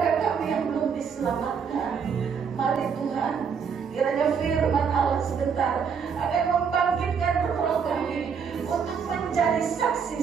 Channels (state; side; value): quieter; left; 6.5 dB